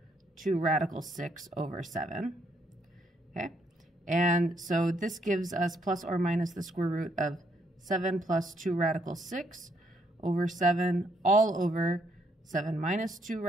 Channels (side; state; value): both; normal; correlation 0.72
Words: radical 6 over 7. Okay, and so this gives us plus or minus the square root of 7 plus 2 radical 6 over 7 all over 7 minus 2